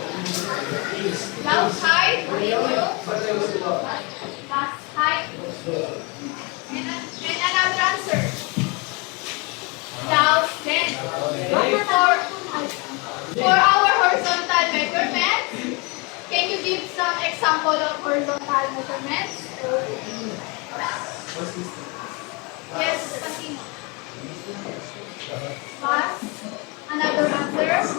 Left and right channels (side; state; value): right; quieter; 28.7 dB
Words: Loud height. Fast height. And another answer. Loud length. For our horizontal measurements, can you give some example of horizontal measurements? Yes, continue. Fast. Another answer.